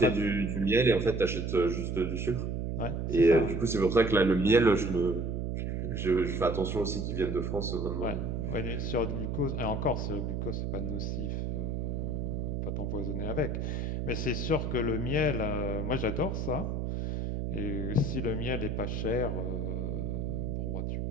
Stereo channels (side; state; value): right; noise; hum, 1 dB below the sound